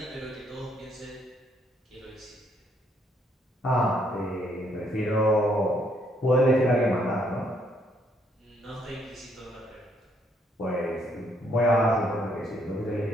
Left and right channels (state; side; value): normal; both; correlation 0.70